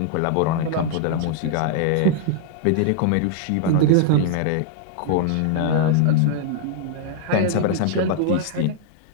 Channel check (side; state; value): both; different; correlation 0.00